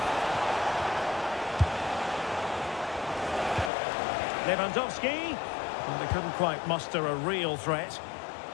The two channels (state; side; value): drops out; right; at 3.7 s